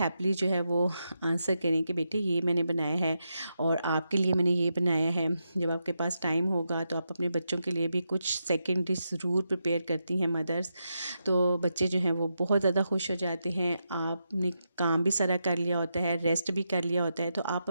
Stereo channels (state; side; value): inverted; both; correlation -0.85